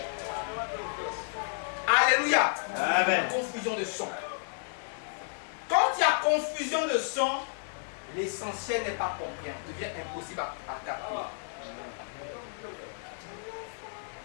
Alléluia. Amen. Confusion de son. Quand il y a confusion de son, l'essentiel n'est pas compris. Il devient impossible à capter.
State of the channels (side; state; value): right; silent; digital silence